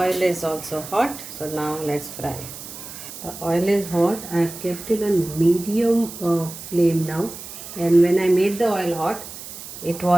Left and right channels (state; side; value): noise; right; hiss, 12 dB below the sound